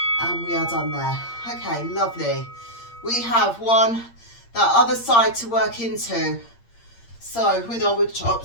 and we are done there. Okay, lovely. We have that other side to work into, so with our wood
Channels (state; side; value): late; right; 8.6 ms